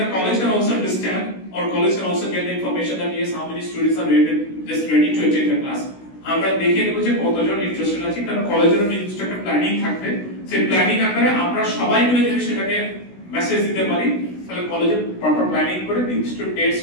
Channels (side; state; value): right; late; 16 ms